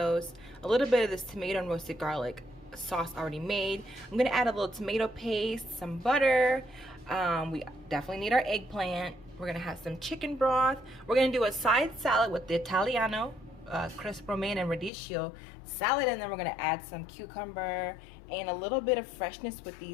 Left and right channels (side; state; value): right; drops out; at 14.9 s